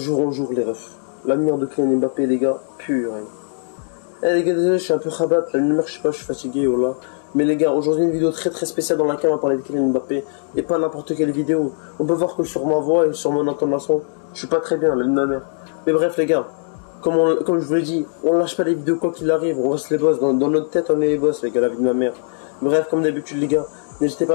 en jour, les refs. L'avenir de Kylian Mbappé, les gars, pur. Eh les gars, désolé, je suis un peu rabat, la lumière, je sais pas, je suis fatigué, voilà. Mais les gars, aujourd'hui une vidéo très spéciale dans laquelle on va parler de Kylian Mbappé. Et pas n'importe quelle vidéo. On peut voir que sur ma voix et sur mon intonation, je suis pas très bien, même ma mère. Mais bref, les gars, comme je vous l'ai dit, on lâche pas les vidéos quoi qu'il arrive, on reste les boss. Dans notre tête, on est les boss, les gars, la vie de ma mère. Bref, comme d'habitude, les gars, n'hésitez pas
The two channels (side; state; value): right; silent; digital silence